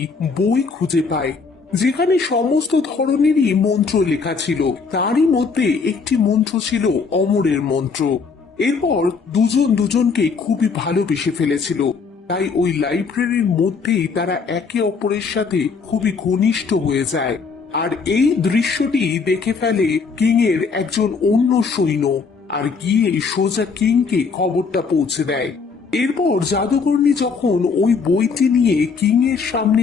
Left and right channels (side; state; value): right; quieter; 5.0 dB